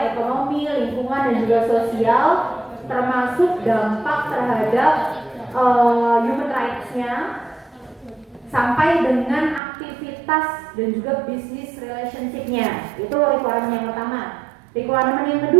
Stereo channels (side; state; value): left; drops out; at 9.6 s